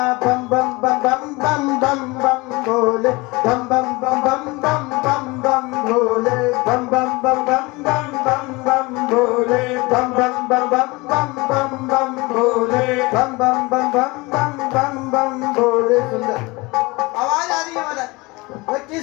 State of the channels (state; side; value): quieter; right; 23.9 dB